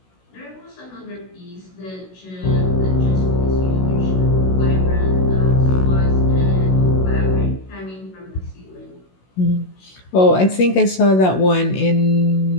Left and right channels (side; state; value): right; late; 16 ms